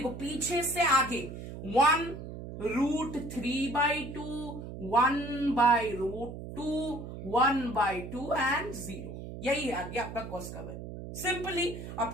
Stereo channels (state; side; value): noise; right; hum, 10 dB below the sound